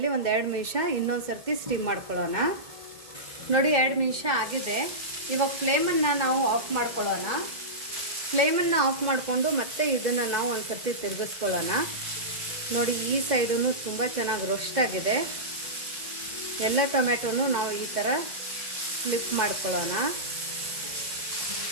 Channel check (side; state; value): left; late; 2.0 ms